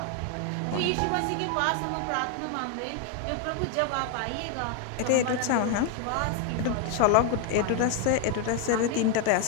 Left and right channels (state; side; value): different; both; correlation 0.01